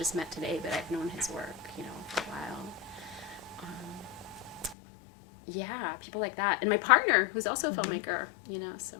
met today, but I've known his work, for a while. People like that. And my partner, who's also a filmmaker, so.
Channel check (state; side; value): drops out; right; at 4.8 s